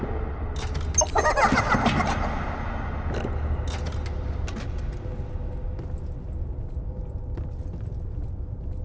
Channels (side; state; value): both; identical; correlation 1.00